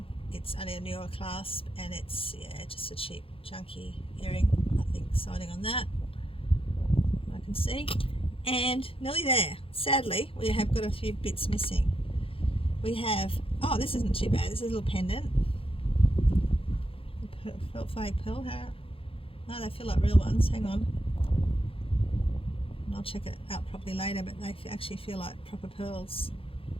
It's only a newer clasp, and it's, yeah, just a cheap junky earring. Nothing exciting on that, I can see. And nearly there. Sadly, we have got a few bits missing. We have, oh, this isn't too bad. This is a little pendant. Fake pearl. No, they feel like real ones. Hang on. I'll check it out properly later, but they actually feel like proper pearls.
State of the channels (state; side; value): late; right; 0.27 ms